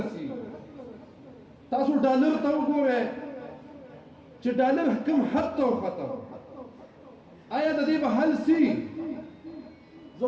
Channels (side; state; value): both; identical; correlation 1.00